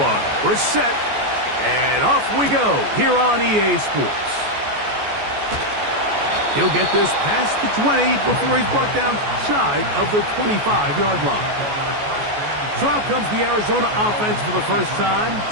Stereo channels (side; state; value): left; late; 14 ms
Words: We're set, and off we go here on EA Sports. He'll get this past the 20 before he's brought down shy of the 25-yard line. So out comes the Arizona offense for the first time.